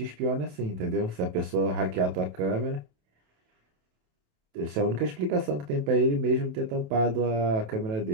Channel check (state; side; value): late; left; 28 ms